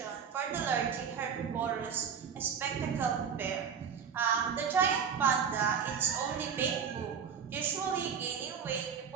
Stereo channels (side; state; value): left; quieter; 7.0 dB